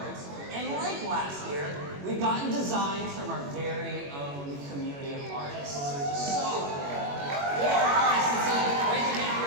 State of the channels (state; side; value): late; left; 21 ms